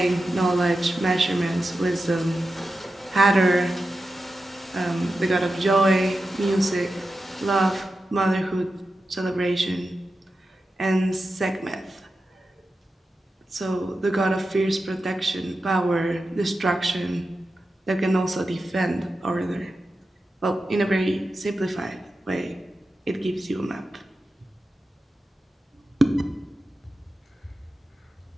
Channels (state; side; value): normal; both; correlation 0.91